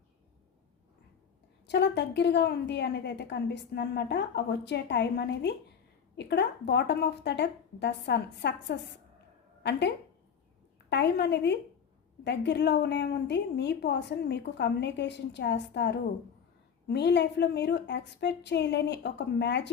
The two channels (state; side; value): quieter; right; 7.3 dB